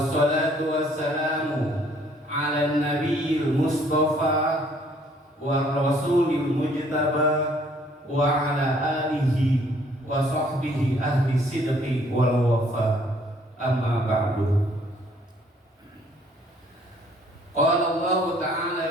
wassalamu 'ala nabiyil mustafa wa rasulil mujtaba wa 'ala alihi wa sahbihi ahli sidqi wal wafa. Amma ba'du. Qala Allah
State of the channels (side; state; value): both; normal; correlation 0.62